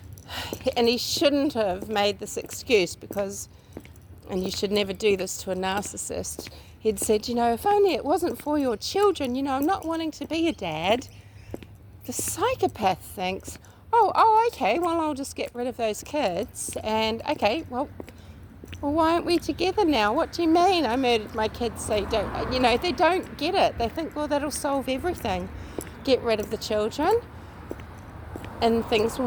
and he shouldn't have made this excuse because, and you should never do this to a narcissist, he'd said, if only it wasn't for your children, I'm not wanting to be a dad. The psychopath thinks, oh, okay, well, I'll just get rid of those kids, and okay, well, why aren't we together now? What do you mean I murdered my kids? They don't, they don't get it. They think, well, that'll solve everything. Get rid of the children and things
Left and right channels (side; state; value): both; identical; correlation 1.00